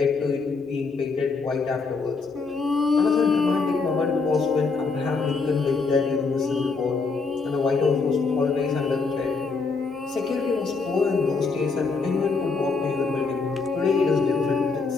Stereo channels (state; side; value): quieter; right; 4.4 dB